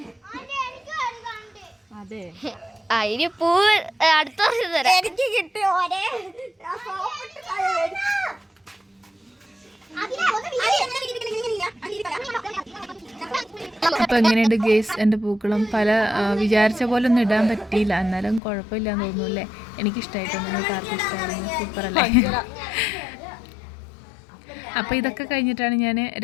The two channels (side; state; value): right; drops out; at 18.4 s